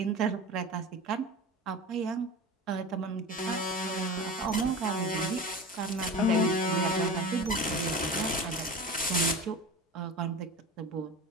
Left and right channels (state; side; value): normal; both; correlation 0.31